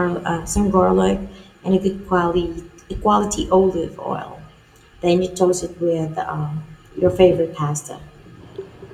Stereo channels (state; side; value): identical; both; correlation 1.00